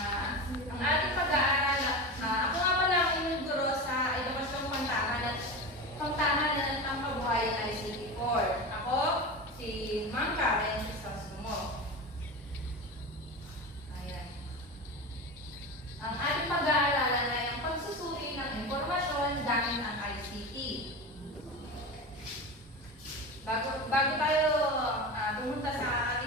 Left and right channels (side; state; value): both; normal; correlation 0.25